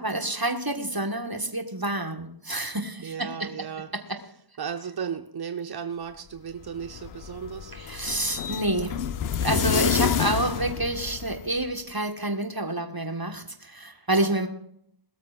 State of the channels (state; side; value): late; left; 1.0 ms